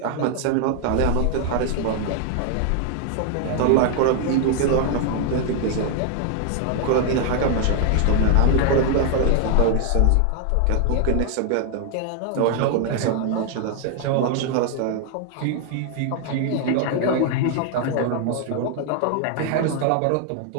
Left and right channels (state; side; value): different; both; correlation 0.00